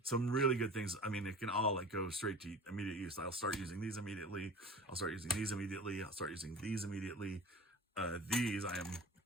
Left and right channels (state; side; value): normal; both; correlation 0.38